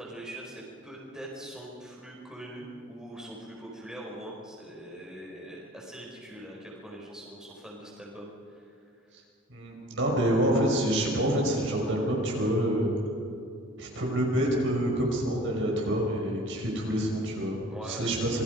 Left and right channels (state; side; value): normal; both; correlation 0.47